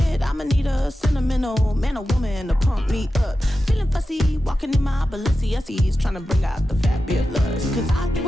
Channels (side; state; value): both; normal; correlation 0.92